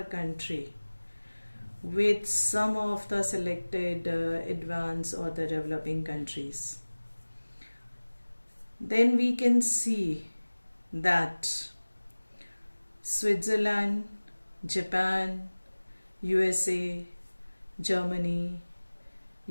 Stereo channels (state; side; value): inverted; both; correlation -1.00